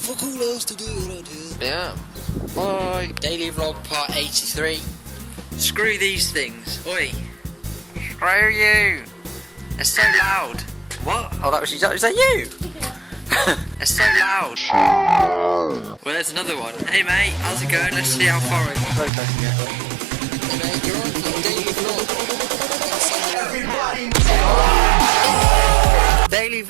all else to do around here. Yeah. Bye. Daily vlog part 83. Screw these things. Oi. Screw you. They're so loud. What? Oh, that was is that you? They're so loud. Well, there's another one. Hey mate, how's it going? Let's see how far I can get. Hey mate, you're on for daily vlog. Daily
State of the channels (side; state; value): left; drops out; at 19.1 s